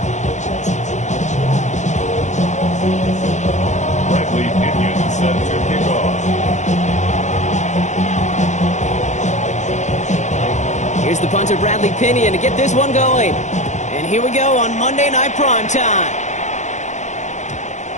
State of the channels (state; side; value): late; right; 0.34 ms